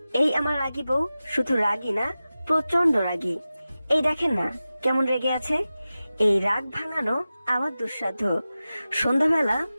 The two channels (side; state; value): both; inverted; correlation -0.95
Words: এই আমার রাগী বউ শুধু রাগী না, প্রচন্ড রাগী। এই দেখেন না কেমন রেগে আছে। এই রাগ ভাঙানো আমার দুঃসাধ্য। সন্ধ্যাবেলা